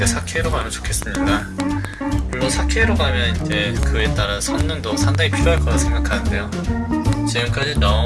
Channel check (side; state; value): both; identical; correlation 1.00